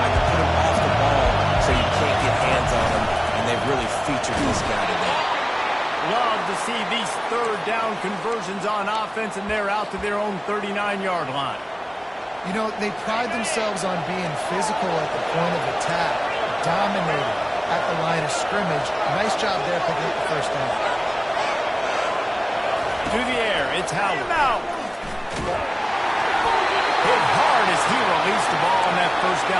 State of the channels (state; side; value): identical; both; correlation 1.00